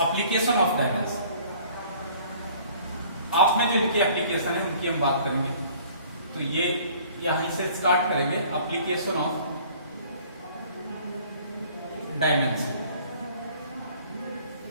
एप्लीकेशन ऑफ डायमेंशन। आप में जो इनकी एप्लीकेशन है उनकी हम बात करेंगे। तो ये यहीं से स्टार्ट करेंगे, एप्लीकेशन ऑफ डायमेंशन,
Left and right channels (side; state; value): both; inverted; correlation -0.53